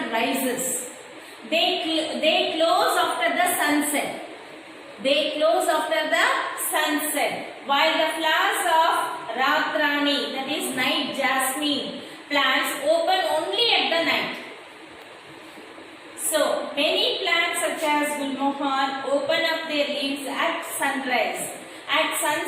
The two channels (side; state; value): both; identical; correlation 1.00